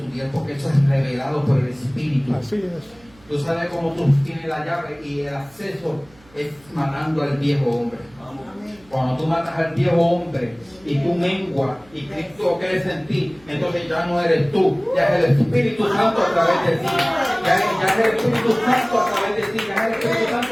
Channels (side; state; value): right; noise; hum, 28 dB below the sound